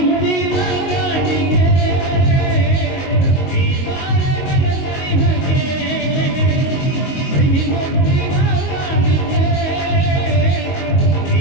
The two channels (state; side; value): late; right; 22 ms